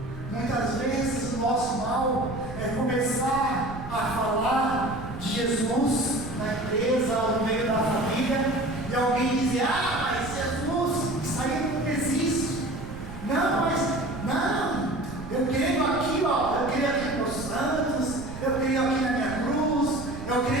Muitas vezes o nosso mal é começar a falar de Jesus na empresa ou no meio da família, e alguém dizer: ah, mas Jesus, isso aí não existe. Não, mas não, eu creio aqui, ó, eu creio aqui nos santos, eu creio aqui na minha cruz, eu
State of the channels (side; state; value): right; noise; rumble, 11 dB below the sound